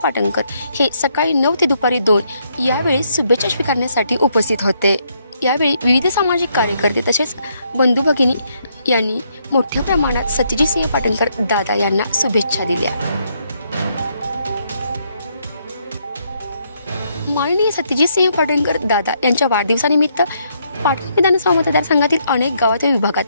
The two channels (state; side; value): inverted; both; correlation -0.73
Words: पाटणकर हे सकाळी 9 ते दुपारी 2 यावेळी शुभेच्छा स्वीकारण्यासाठी उपस्थित होते. यावेळी विविध सामाजिक कार्यकर्ते तसेच बंधू भगिनी यांनी मोठ्या प्रमाणात सत्यजित सिंह पाटणकर दादा यांना शुभेच्छा दिल्या. माननीय सत्यजित सिंह पाटणकर दादा यांच्या वाढदिवसानिमित्त पाटण विधानसभा मतदारसंघातील अनेक गावात व विभागात